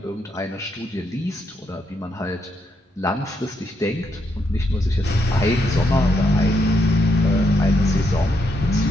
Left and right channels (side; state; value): both; normal; correlation 0.78